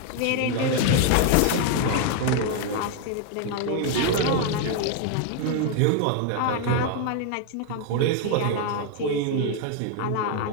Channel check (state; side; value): different; both; correlation 0.01